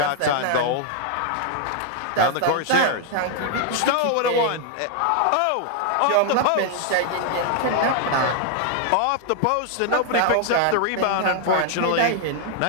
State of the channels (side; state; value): both; different; correlation 0.00